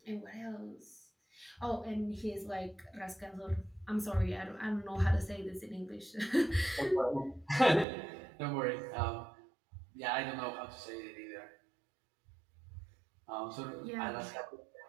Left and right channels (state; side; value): drops out; left; at 7.9 s